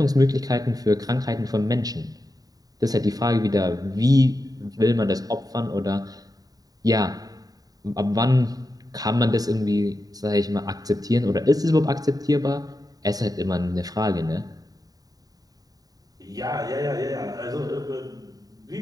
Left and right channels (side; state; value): left; late; 0.18 ms